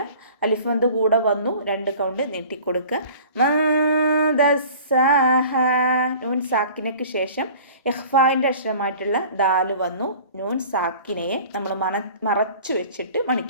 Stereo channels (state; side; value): inverted; both; correlation -0.45